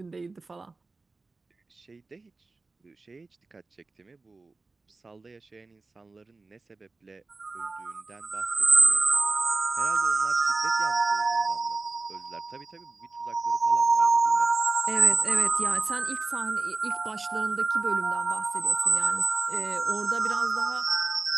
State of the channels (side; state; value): left; quieter; 3.7 dB